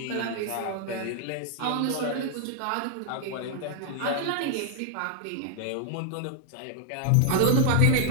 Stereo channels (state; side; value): different; both; correlation 0.00